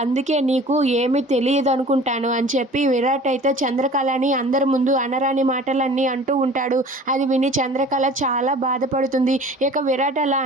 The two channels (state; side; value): normal; both; correlation 0.45